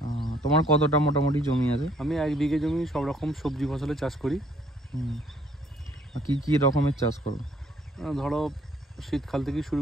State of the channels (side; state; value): both; normal; correlation 0.63